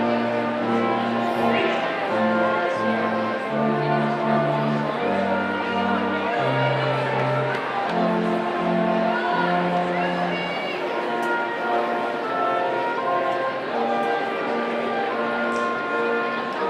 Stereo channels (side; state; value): both; identical; correlation 1.00